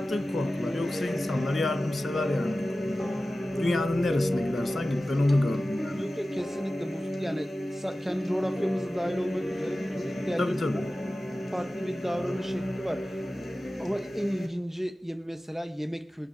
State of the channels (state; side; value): normal; both; correlation 0.95